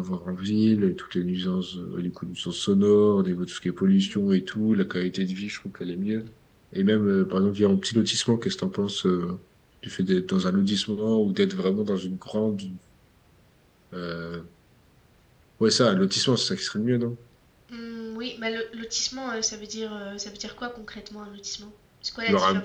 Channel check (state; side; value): identical; both; correlation 1.00